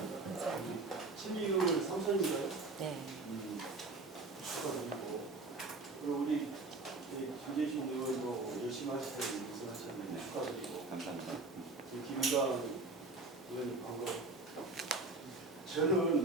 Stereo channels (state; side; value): quieter; left; 3.3 dB